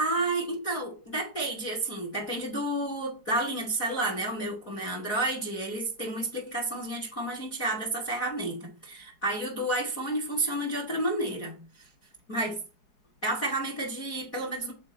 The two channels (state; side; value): late; right; 4.7 ms